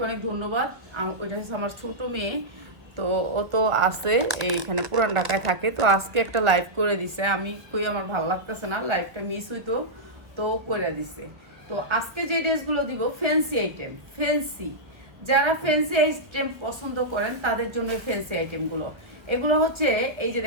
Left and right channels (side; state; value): left; late; 1.1 ms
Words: অনেক ধন্যবাদ। ওইটা হচ্ছে আমার ছোট মেয়ে, তো ও তো আছে এইখানে পুরান ঢাকায় থাকে, তো আজকে একটা লাইভ করে দিছে। আমি কই আমার ভালো লাগতেছে না, লাইভটা মিস হইতো, তো করে দিছে। তো আজকে যে ড্রেসগুলো দিব ফ্যান্সি আইটেম, ফ্যান্সি, যারা ফ্যান্সি আইটেম পছন্দ করেন তাদের জন্য ফ্যান্সি আইটেমগুলো। এগুলো হচ্ছে এই যে